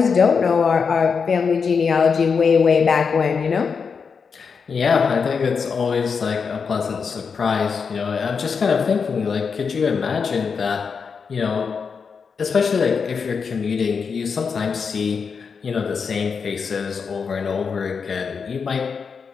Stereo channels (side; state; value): right; quieter; 5.7 dB